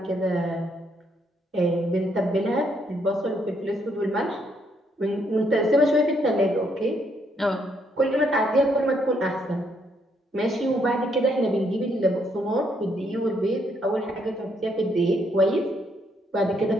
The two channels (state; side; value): normal; both; correlation 0.72